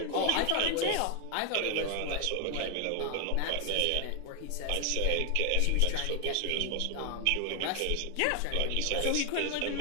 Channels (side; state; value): both; different; correlation 0.00